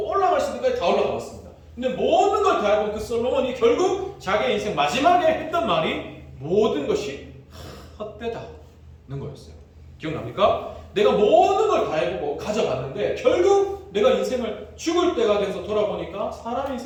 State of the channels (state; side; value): identical; both; correlation 1.00